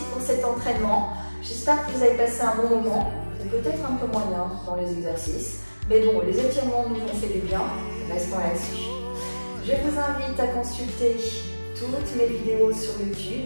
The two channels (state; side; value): inverted; both; correlation -1.00